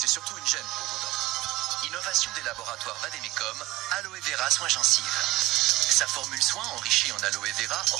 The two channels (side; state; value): left; quieter; 18.5 dB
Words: surtout une gêne pour vos dents. Innovation des laboratoires Vademecum, Aloe Vera Soin Gencives. Sa formule soin enrichie en aloe vera